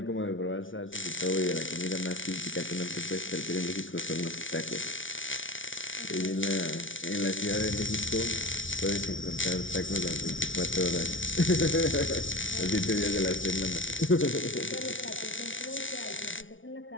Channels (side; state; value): right; late; 0.56 ms